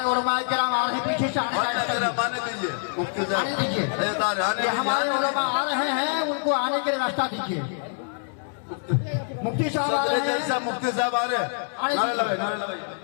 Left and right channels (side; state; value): right; silent; 61 dB below the other